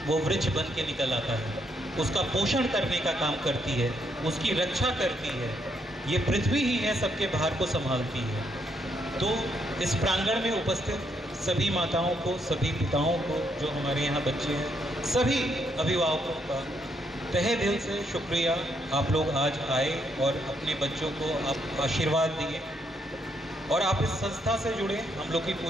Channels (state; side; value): normal; both; correlation 0.75